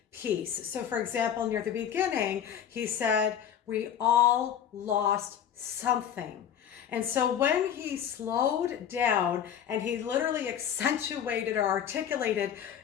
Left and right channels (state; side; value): quieter; right; 9.2 dB